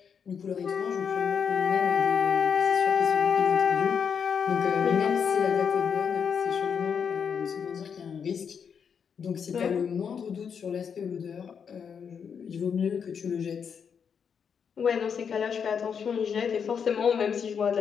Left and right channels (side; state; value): right; quieter; 6.9 dB